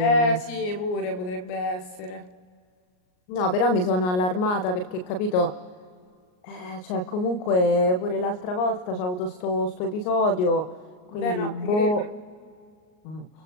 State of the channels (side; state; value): right; late; 38 ms